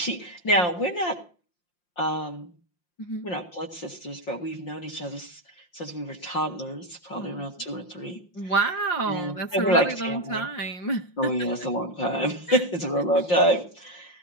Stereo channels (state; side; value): late; right; 5.7 ms